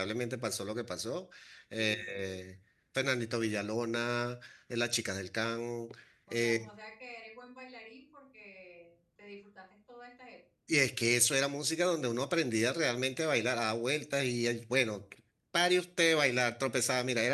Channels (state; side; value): identical; both; correlation 1.00